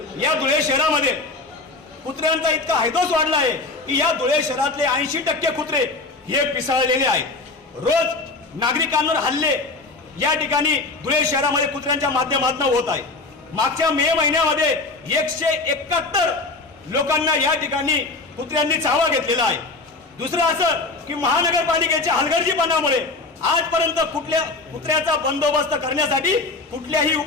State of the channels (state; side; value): quieter; right; 3.5 dB